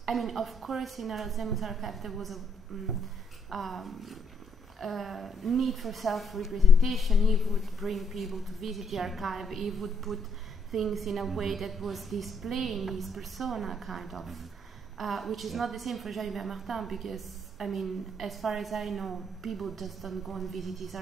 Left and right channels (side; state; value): both; normal; correlation 0.70